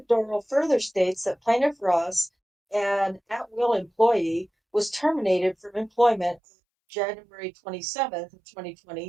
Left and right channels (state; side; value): drops out; left; at 6.4 s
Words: Dorrel further states that plaintiff Ross, an at-will employee, was terminated from employment January 27th of